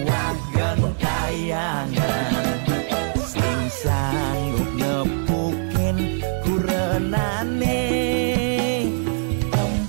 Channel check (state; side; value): silent; left; digital silence